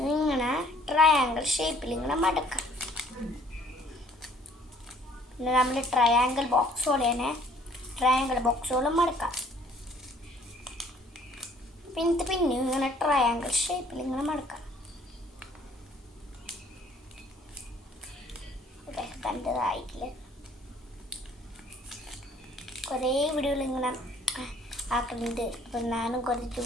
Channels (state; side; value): normal; both; correlation 0.59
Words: ഇങ്ങനെ ട്രയാങ്കിൾ ഷേപ്പിൽ ഇങ്ങനെ മടക്കാം. പിന്നെ നമ്മൾ ട്രയാങ്കിൾ ബോക്സ് പോലെ തന്നെ ട്രയാങ്കിൾ ബോക്സുകളും മടക്കാം. പിന്നെ ഇങ്ങനെ ട്രയാങ്കിൾ ഷേപ്പിൽ ഇങ്ങനെ മടക്കാം. കണ്ടതായിട്ടില്ല, കുറേ വീഡിയോകൾ ഇങ്ങനെ ആക്കുന്നുണ്ട്. അപ്പം ഞാനും കുറച്ച്